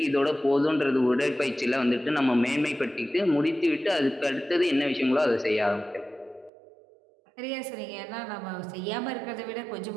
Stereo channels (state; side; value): drops out; left; at 6.5 s